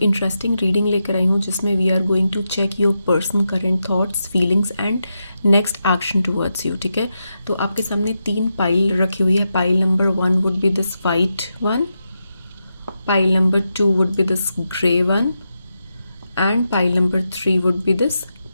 इंटरेस्टिंग रीडिंग लेकर आई हूँ जिसमें we are going to check your person current thoughts feelings and next action towards you. ठीक है, तो आपके सामने 3 पाइल रखी हुई है। Pile number 1 would be this white one, pile number 2 would be this grey one and pile number 3 would be this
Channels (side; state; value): both; inverted; correlation -0.87